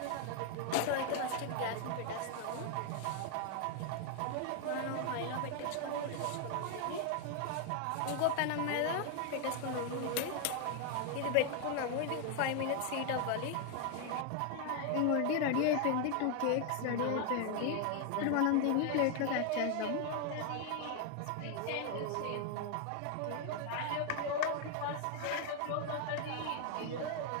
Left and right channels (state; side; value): different; both; correlation 0.01